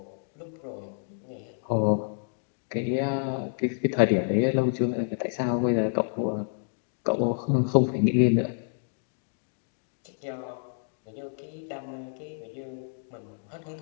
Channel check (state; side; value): silent; right; digital silence